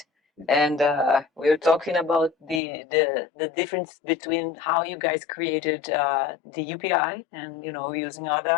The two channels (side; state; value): right; drops out; at 2.6 s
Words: And we're talking about the difference between how you guys created the UPI and using